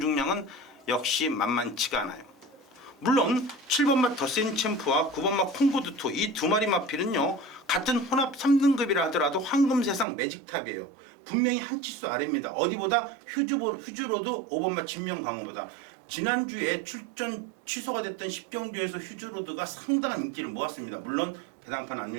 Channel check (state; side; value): drops out; left; at 10.1 s